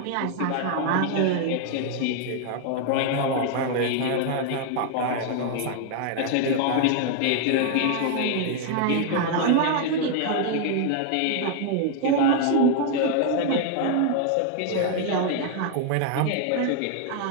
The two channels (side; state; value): both; different; correlation 0.00